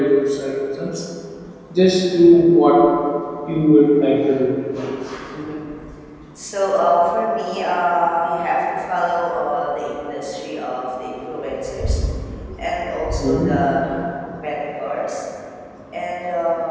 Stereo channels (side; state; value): both; identical; correlation 1.00